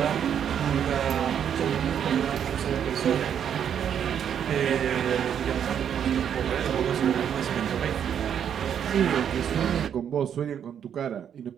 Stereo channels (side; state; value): left; quieter; 8.7 dB